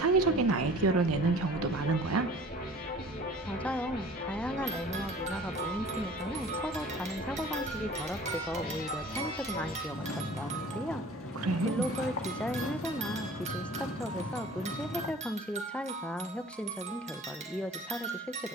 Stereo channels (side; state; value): both; normal; correlation 0.46